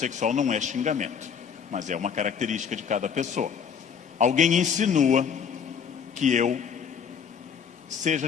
não é xingamento, mas é uma característica de cada pessoa. Alguém insinua que eu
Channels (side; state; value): right; quieter; 7.1 dB